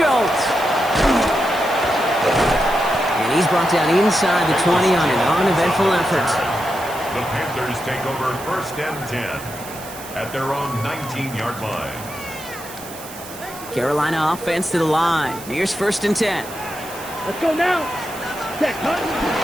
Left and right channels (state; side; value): noise; right; hiss, 15 dB below the sound